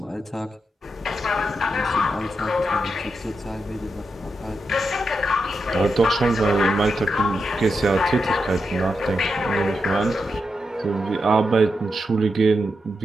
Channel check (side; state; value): both; normal; correlation 0.86